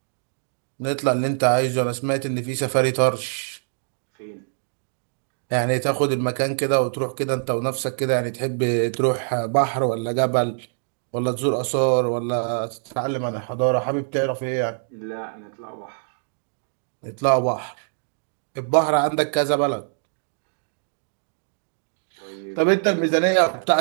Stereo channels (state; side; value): silent; left; digital silence